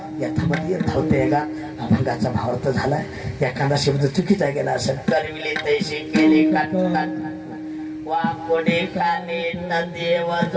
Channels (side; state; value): both; identical; correlation 1.00